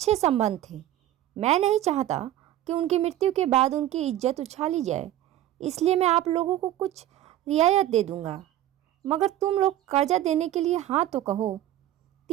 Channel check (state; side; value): quieter; left; 13.2 dB